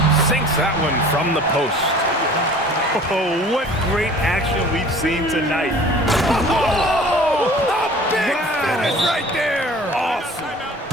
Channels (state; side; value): normal; both; correlation 0.46